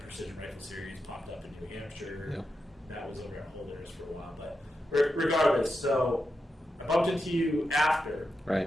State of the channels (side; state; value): both; normal; correlation 0.88